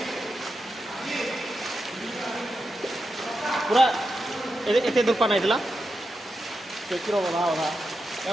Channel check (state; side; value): normal; both; correlation 0.88